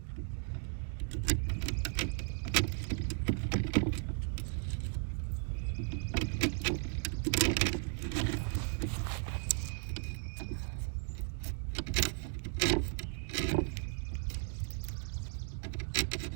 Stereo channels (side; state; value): left; silent; 54 dB below the other